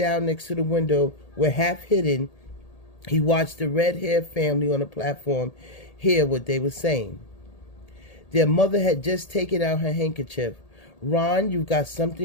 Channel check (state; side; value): late; right; 1.8 ms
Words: next to the window where, half hidden, he watched the red-haired family on the platform hear what they were saying. Their mother had just taken out her handkerchief. "Ron, you've got